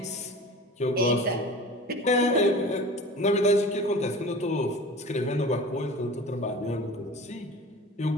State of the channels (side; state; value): both; normal; correlation 0.38